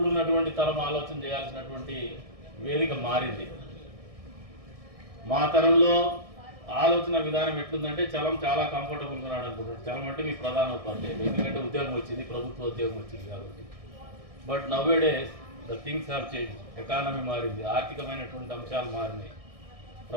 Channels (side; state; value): left; late; 1.6 ms